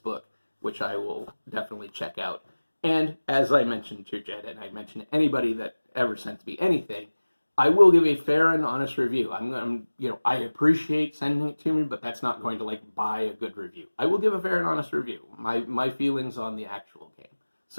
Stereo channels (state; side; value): inverted; both; correlation -1.00